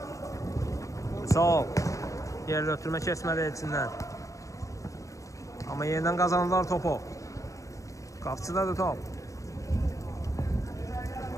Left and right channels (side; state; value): right; late; 0.16 ms